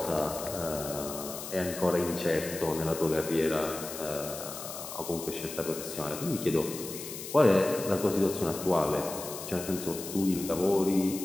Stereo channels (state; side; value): noise; left; hiss, 9 dB below the sound